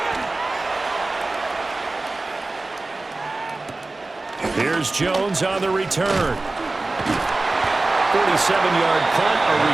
Here's Jones on the return. 47-yard punt, a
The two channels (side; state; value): left; quieter; 3.2 dB